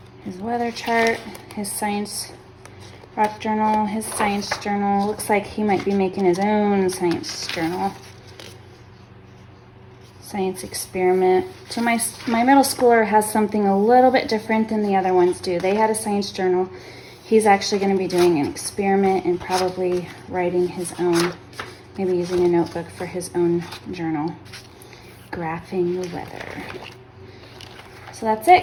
His weather chart, his science rock journal, his science journal. Looks like he might be making his own science journal. Science experiment. So my middle schooler has something a little bit different than the other ones do. They had a science journal. He's actually going to be doing an experiment and probably writing his own, maybe using a notebook for his own journal. Graphing the weather. So that's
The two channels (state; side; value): identical; both; correlation 1.00